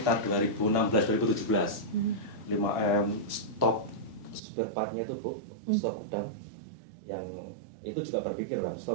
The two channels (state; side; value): drops out; left; at 4.4 s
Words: 2016-2017. 5M stok spare partnya itu Bu, stok gudang. Yang itu juga berpikir kan,